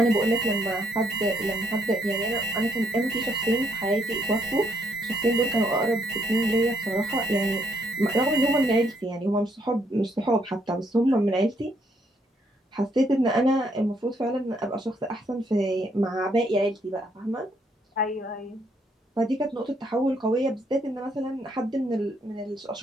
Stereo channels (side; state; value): both; normal; correlation 0.72